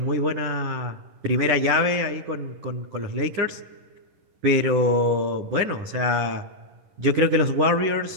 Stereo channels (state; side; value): late; left; 10 ms